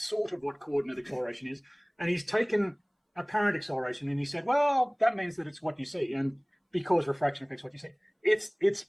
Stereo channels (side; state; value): both; identical; correlation 1.00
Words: sort of what coordinate acceleration is. And he's taken apparent acceleration and he said, well, that means that it's what you see, and because refraction affects what you see.